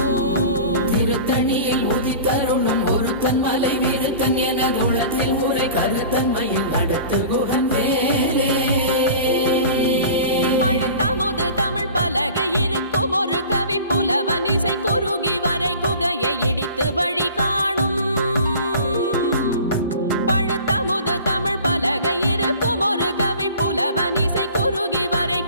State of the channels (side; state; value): both; inverted; correlation -0.41